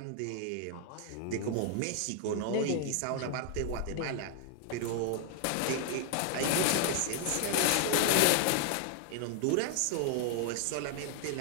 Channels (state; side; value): different; both; correlation 0.00